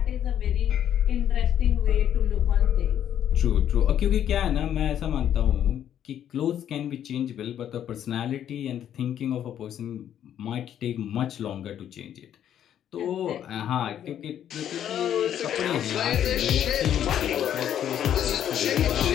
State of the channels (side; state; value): right; quieter; 10.2 dB